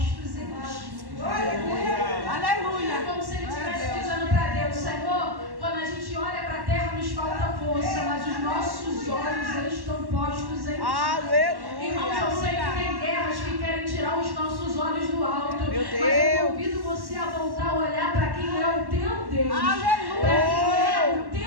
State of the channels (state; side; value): late; left; 1.1 ms